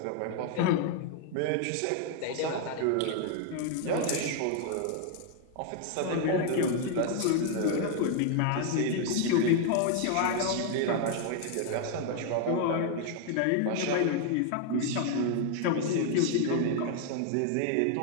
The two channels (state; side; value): different; both; correlation 0.00